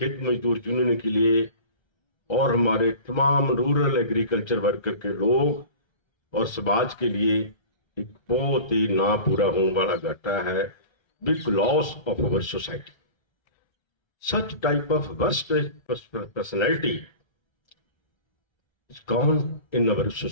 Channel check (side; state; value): right; late; 1.3 ms